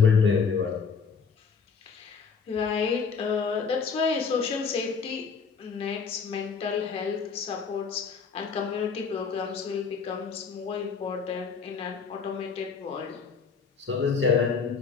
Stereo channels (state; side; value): quieter; right; 5.6 dB